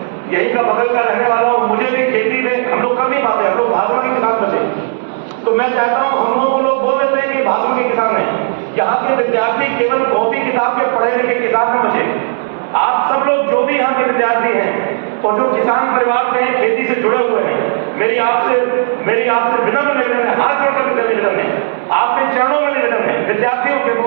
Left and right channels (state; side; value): silent; left; 70 dB below the other